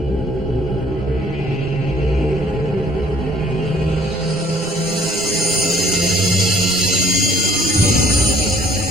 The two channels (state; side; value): normal; both; correlation 0.58